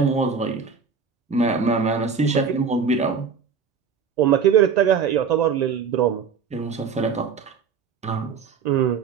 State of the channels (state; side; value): quieter; left; 6.1 dB